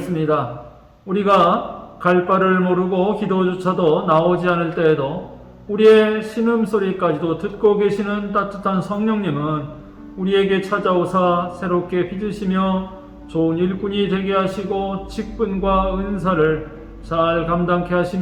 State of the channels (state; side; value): identical; both; correlation 1.00